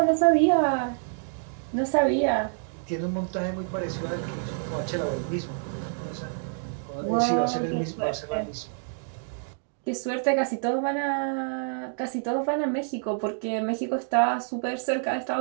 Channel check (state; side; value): silent; left; digital silence